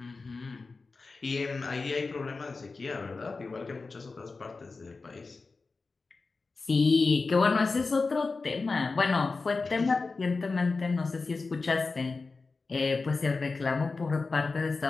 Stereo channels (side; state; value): right; quieter; 4.0 dB